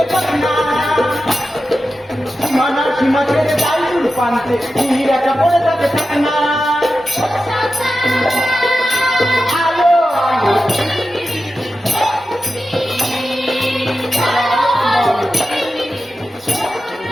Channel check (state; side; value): normal; both; correlation 0.92